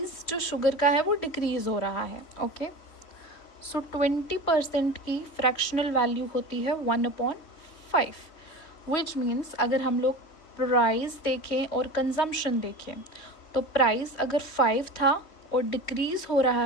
जो शुगर का है वो डिक्रीज़ हो रहा है। ओके, सो 20% की फ्रैक्शनल वैल्यू होती है 1/5, विच मीन्स अगर हम लोग प्राइस देखें और कंजम्पशन देखें तो प्राइस अगर 5 था और डिक्रीज़ हो रहा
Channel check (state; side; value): late; right; 3.2 ms